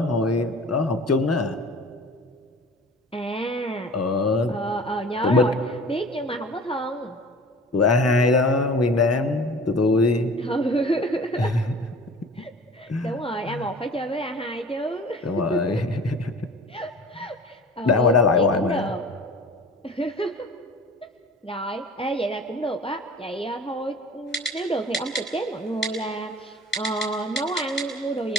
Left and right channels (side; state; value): both; normal; correlation 0.42